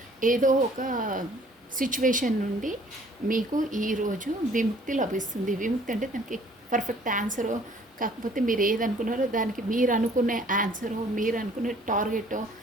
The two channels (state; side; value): normal; both; correlation 0.57